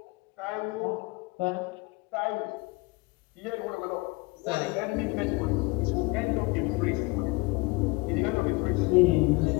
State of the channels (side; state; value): right; quieter; 26.1 dB